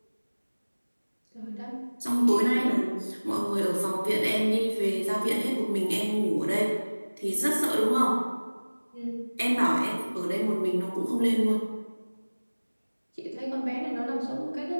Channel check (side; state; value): both; inverted; correlation -1.00